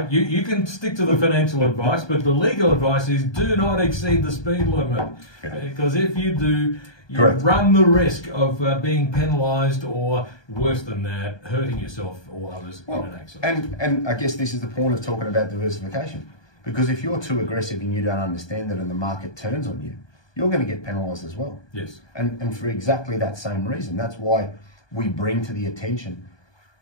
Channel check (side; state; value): right; late; 1.2 ms